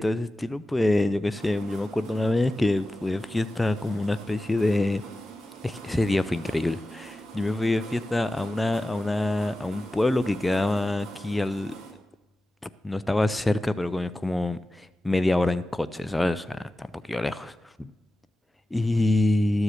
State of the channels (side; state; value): both; normal; correlation 0.94